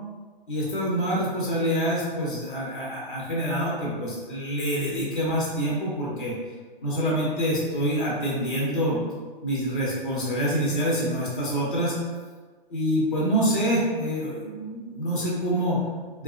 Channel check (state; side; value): normal; both; correlation -0.05